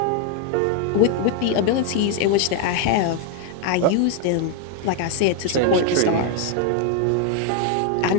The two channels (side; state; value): both; different; correlation 0.00